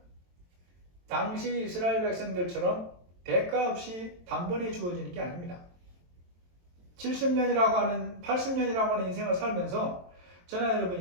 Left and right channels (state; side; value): late; left; 23 ms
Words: 당시 이스라엘 백성들처럼 대가 없이 단번에 주어지는 게 아닙니다. 70년이라고 하는 80년이라고 하는 인생을 살면서 저나